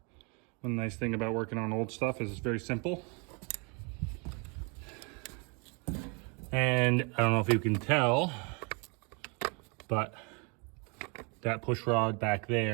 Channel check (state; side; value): quieter; left; 33.3 dB